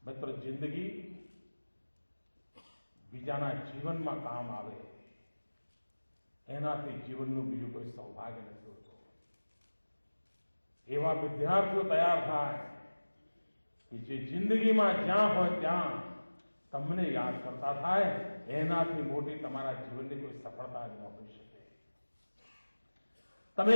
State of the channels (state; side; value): inverted; both; correlation -1.00